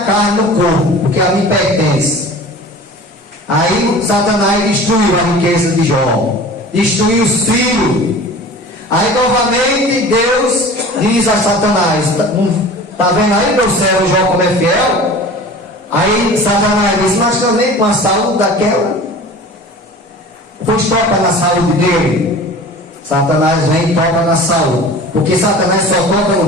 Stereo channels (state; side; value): normal; both; correlation 0.40